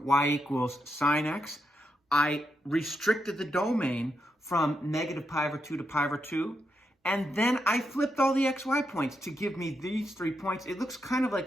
y equals sine x. I restricted the domain from negative pi over 2 to pi over 2. And then I flipped all the xy points to give me these 3 points. It looks kind of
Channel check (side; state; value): both; normal; correlation 0.83